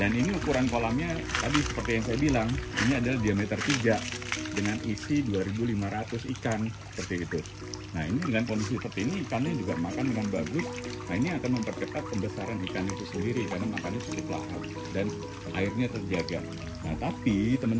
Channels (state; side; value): identical; both; correlation 1.00